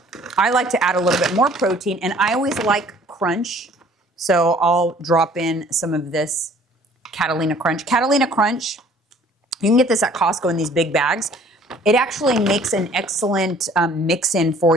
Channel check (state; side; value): normal; both; correlation 0.55